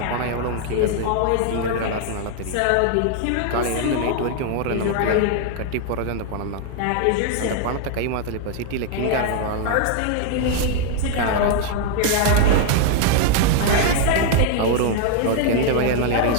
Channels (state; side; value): different; both; correlation 0.00